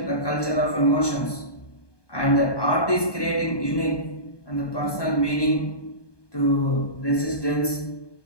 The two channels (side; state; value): right; late; 1.2 ms